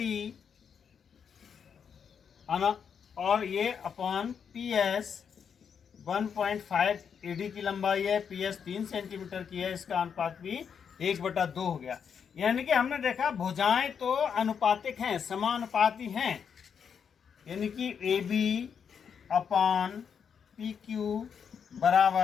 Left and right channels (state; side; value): quieter; right; 7.1 dB